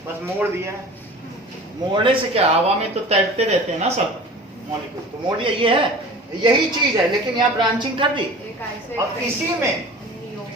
बस मोड़ दिया है। मोड़ने से क्या, हवा में तो तैरते रहते हैं ना सब मॉलिक्यूल, तो मोड़ दिया। ये है, यही चीज है, लेकिन यहाँ ब्रांचिंग कर दी। और इसी में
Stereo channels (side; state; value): both; normal; correlation 0.40